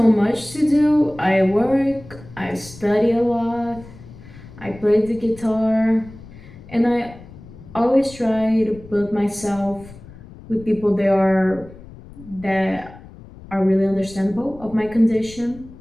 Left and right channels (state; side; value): noise; left; rumble, 19 dB below the sound